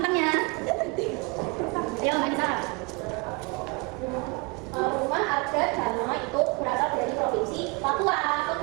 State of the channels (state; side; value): quieter; left; 29.2 dB